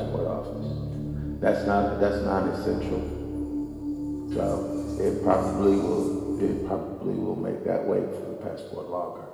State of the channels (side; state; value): both; identical; correlation 1.00